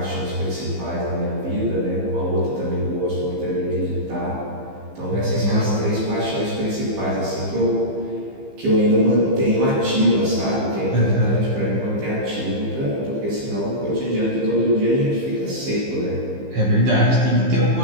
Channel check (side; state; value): left; late; 15 ms